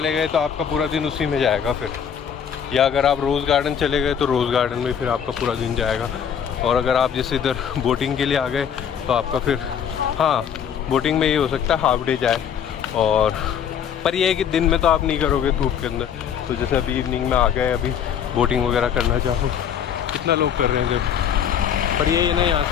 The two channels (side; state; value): right; quieter; 8.2 dB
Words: गए तो आपका पूरा दिन उसी में जाएगा फिर, या अगर आप रोज़ गार्डन चले गए तो रोज़ गार्डन में फिर आपका पूरा दिन जाएगा। और अगर आप जैसे इधर बोटिंग के लिए आ गए तो आपका फिर, हाँ बोटिंग में ये हो सकता है हाफ डे जाए, और पर ये है कि दिन में तो आप नहीं करोगे धूप के अंदर, तो जैसे अभी इवनिंग में आ गए, अभी बोटिंग वगैरह करना चाहो, कितना लोग कर रहे हैं जब, पर ये ना यहाँ